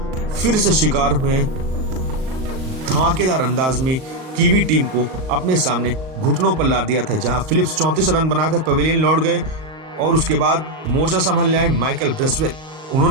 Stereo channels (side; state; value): left; late; 38 ms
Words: फिर से शिकार में धमाकेदार अंदाज में कीवी टीम को अपने सामने घुटनों पर ला दिया था, जहां फिलिप्स 34 रन बनाकर पवेलियन लौट गए और उसके बाद मोर्चा संभालने आए माइकल ब्रेसवेल।